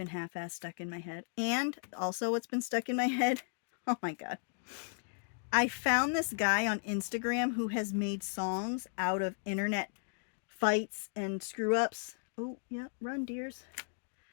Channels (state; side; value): silent; right; digital silence